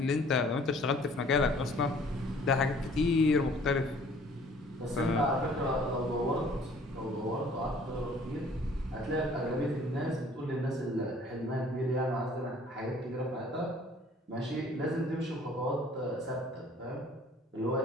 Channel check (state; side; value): normal; both; correlation 0.55